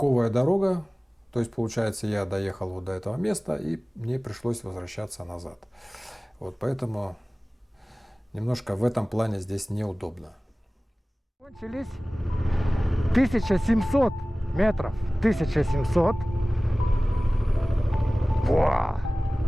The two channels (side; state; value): both; normal; correlation 0.98